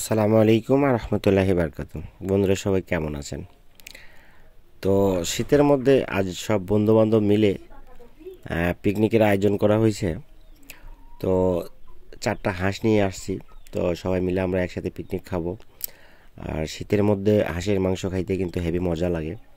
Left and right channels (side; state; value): both; identical; correlation 1.00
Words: আলাইকুম রহমতুল্লাহি বারকাতুহু। বন্ধুরা সবাই কেমন আছেন? তো শীতের মধ্যে আজ সব বন্ধুবান্ধব মিলে পিকনিকের আয়োজন করা হয়েছে। তো 4টা হাঁস নিয়ে আসছি। তো সবাই মিলে আমরা একসাথে পিকনিক খাবো। আর শীতের মধ্যে হাঁসের মাংস খাইতে কিন্তু হেভি মজা লাগে।